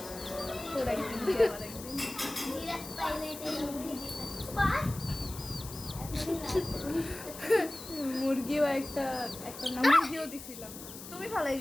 তোর একদিন মুরগিও একটা নাম মুরগিও দিছিলাম তুমি ফালাই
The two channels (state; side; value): noise; left; hiss, 13 dB below the sound